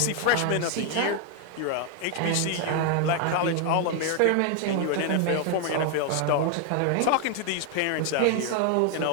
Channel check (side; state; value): both; different; correlation 0.00